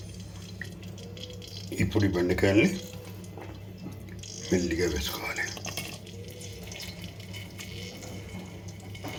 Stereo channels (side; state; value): both; identical; correlation 1.00